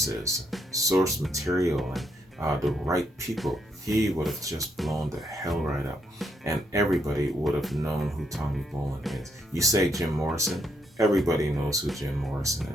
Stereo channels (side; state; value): both; normal; correlation 0.76